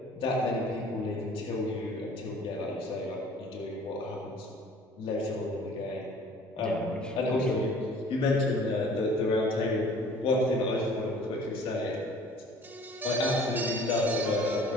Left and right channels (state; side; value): normal; both; correlation 0.50